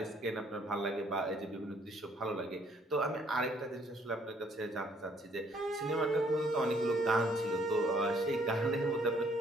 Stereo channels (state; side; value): normal; both; correlation 0.64